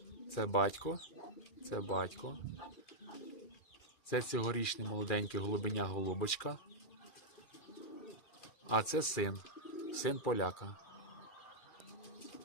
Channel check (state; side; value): late; right; 2.4 ms